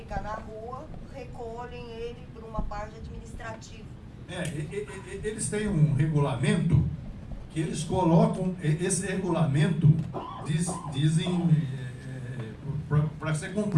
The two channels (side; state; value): both; identical; correlation 1.00